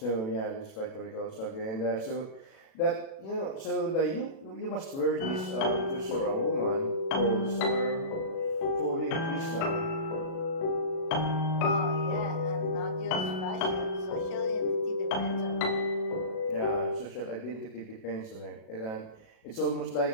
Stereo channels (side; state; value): right; late; 37 ms